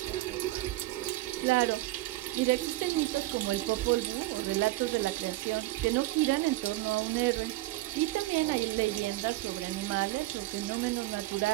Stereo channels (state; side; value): quieter; left; 18.0 dB